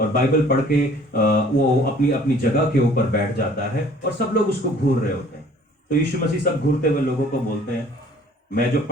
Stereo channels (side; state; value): both; normal; correlation 0.53